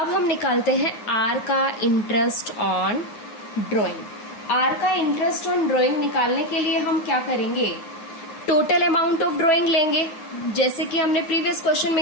हम निकालते हैं आर का इंटरेस्ट ऑन ड्राइंग। आर का इंटरेस्ट ऑन ड्राइंग निकालने के लिए हम क्या करेंगे, टोटल अमाउंट ऑफ ड्राइंग लेंगे, जैसे कि हमने प्रीवियस क्वेश्चन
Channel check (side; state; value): right; late; 9.6 ms